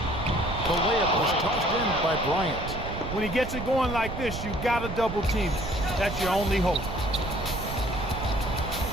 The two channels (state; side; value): noise; right; rumble, 7 dB below the sound